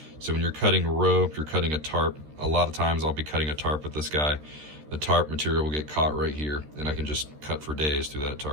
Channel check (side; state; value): left; late; 13 ms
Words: So when you're cutting rope, you're cutting a tarp. A lot of times I'll be cutting a tarp with this guy. The tarp material will get caught right here, and I can just cut for days through that